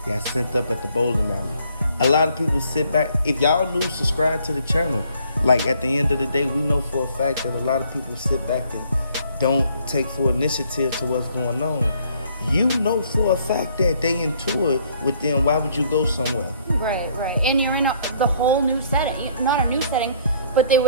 got sent up at the bowling alley. A lot of people sit back. If y'all new, subscribe to the channel. Like at the end of the day, we know for a fact that a lot of people sit back and don't take full initiative to what's going on. You know for a fact that they into it with them. Why would you go somewhere? Right, right. And you're in the whole new setting. Not a new setting, but they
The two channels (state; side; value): inverted; both; correlation -0.63